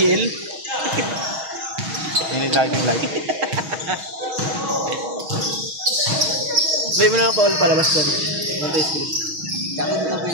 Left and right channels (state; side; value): late; left; 6.3 ms